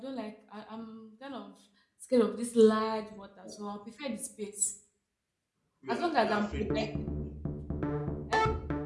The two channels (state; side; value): identical; both; correlation 1.00